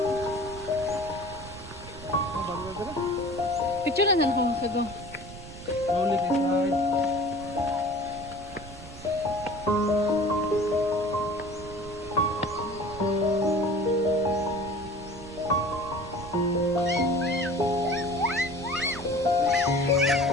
Oh, bago na dala. Picture na lang kung kago. Slowly kay slide.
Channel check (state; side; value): noise; right; rumble, 15 dB below the sound